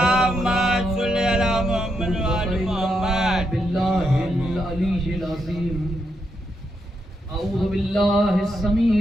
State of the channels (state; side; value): normal; both; correlation 0.81